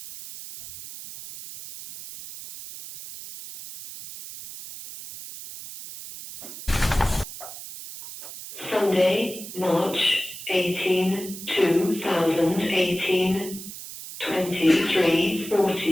Sunday, March 18, 2018,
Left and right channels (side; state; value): right; noise; hiss, 12 dB below the sound